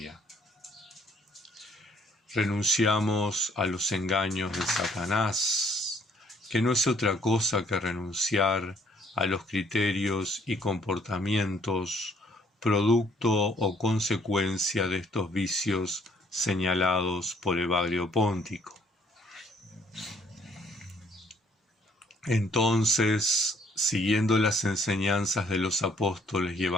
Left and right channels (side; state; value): both; normal; correlation 0.64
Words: Renunciamos a los engaños de Satanás, que no es otra cosa que renunciar a los criterios y comportamientos producto o consecuencia de estos vicios señalados por Evagrio Póntico. Entonces, siguiendo las enseñanzas de los apóstoles y